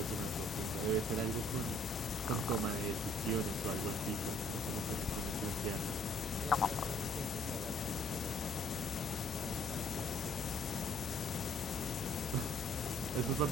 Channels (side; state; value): both; normal; correlation 0.63